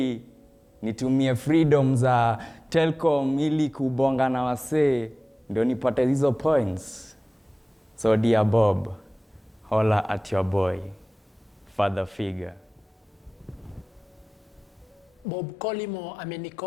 nitumie freedom za Telcom ili kubonga na wasee ndio nipate hizo points. So dear Bob, holla at your boy, father figure. Bob Colimo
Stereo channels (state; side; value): normal; both; correlation 0.98